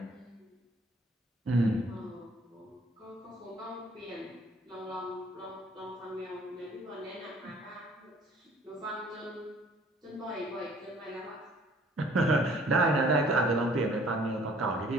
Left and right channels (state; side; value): normal; both; correlation 0.56